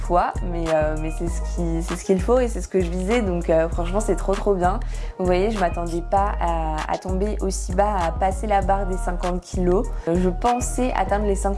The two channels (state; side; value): identical; both; correlation 1.00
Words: mais c'est ce qu'il faut et c'est ce que je visais, donc franchement c'est trop bien. Vous voyez, je m'attendais pas à tomber aussi bas, à passer la barre des 50 kg. Je pensais atteindre les